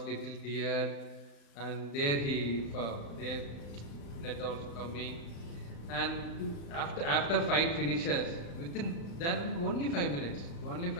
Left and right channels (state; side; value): late; right; 35 ms